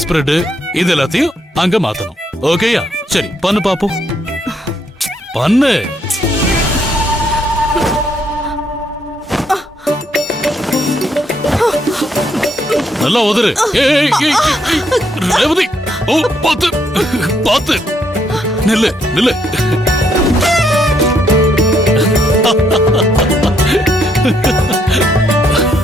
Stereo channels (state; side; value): normal; both; correlation 0.73